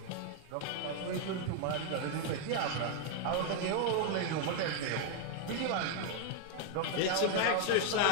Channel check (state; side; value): different; both; correlation 0.01